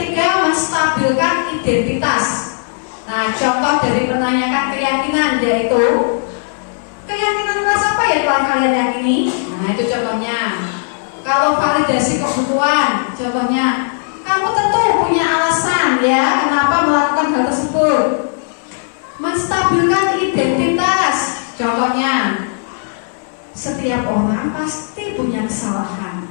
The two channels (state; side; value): silent; right; 69 dB below the other